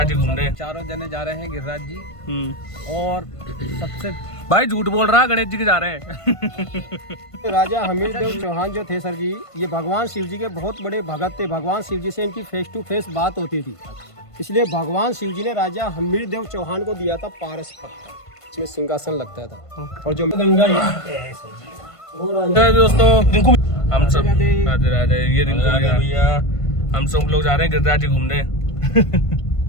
जी घूमने। चारों जने जा रहे हैं गिरिराज जी। और सबसे भाई झूठ बोल रहा है, गणेश जी के जा रहे हैं। राजा हमीरदेव चौहान जो थे सर जी, ये भगवान शिव जी के बहुत बड़े भगत थे। भगवान शिव जी से इनकी फेस टू फेस बात होती थी, इसलिए भगवान शिव जी ने राजा हमीरदेव चौहान को दिया था पारस पत्थर, इसमें सिंहासन लगता था। और जो गंगा दोस्तों, रिंकू हम सब राधे राधे। ये रिंकू भैया, हम सब लोग जा रहे हैं गिरिराज जी घूमने।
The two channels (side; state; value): right; late; 1.5 ms